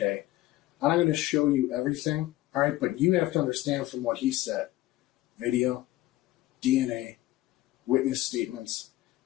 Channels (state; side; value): quieter; right; 16.3 dB